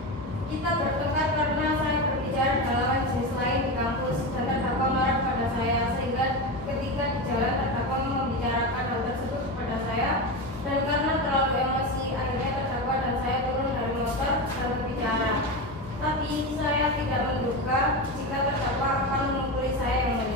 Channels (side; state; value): both; normal; correlation 0.19